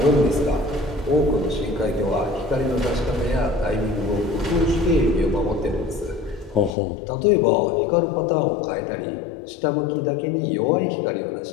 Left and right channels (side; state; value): right; drops out; at 6.8 s